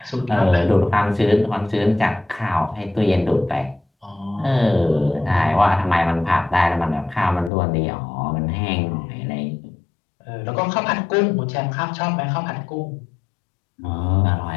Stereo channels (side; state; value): right; drops out; at 7.5 s